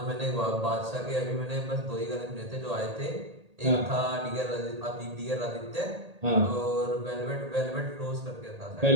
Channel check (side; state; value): left; late; 1.8 ms